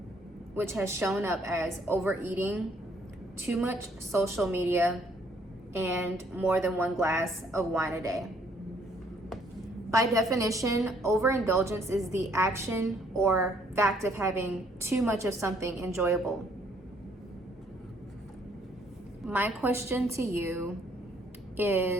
which has shown up as overeating, too much social media, and more than one glass of wine a day. By definition, overindulgence is the action or fact of having too much of something enjoyable. My question to you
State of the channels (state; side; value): normal; both; correlation 0.65